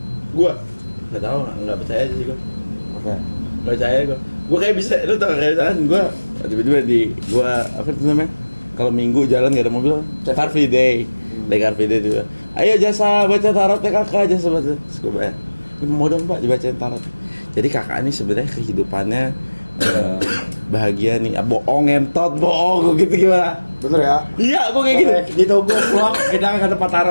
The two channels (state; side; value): inverted; both; correlation -1.00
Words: Gua nggak tahu, nggak percaya aja sih gua. Oke. Nggak percaya gua kayak bisa, lu tau kayak misalkan gua tiba-tiba gua apa itu namanya? Kalau minggu jalan nggak ada mobil, Car Free Day. Day Car Free Day tuh. Ayo jasa baca tarot ya kakak, jasa baca. Terus gua bayar. Mau dong Pak dibacain tarot. Jadi kakak ini sebenarnya kehidupannya bahagia nih. Bohong entot, bohong gitu gimana? Bener ya? Iya, gua kayak gitu. Gitu gue vlog kita ke tempat